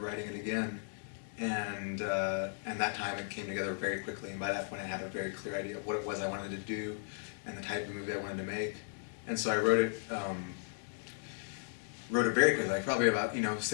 writing it again, and that time it came together very quickly, and by that point I had a very clear idea of what it was I wanted to do and the type of movie I wanted to make, and so I wrote it very quickly, like probably about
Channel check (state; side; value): silent; right; 54 dB below the other